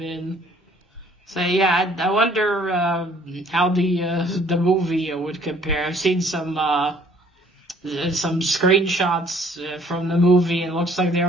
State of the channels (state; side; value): normal; both; correlation 0.59